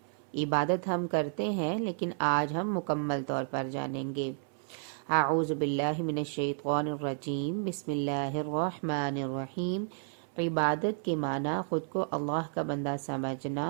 عبادت ہم کرتے ہیں لیکن آج ہم مکمل طور پر جانیں گے۔ اعوذ باللہ من الشیطان الرجیم، بسم اللہ الرحمن الرحیم۔ عبادت کے معنی خود کو اللہ کا بندہ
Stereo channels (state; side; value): silent; left; 57 dB below the other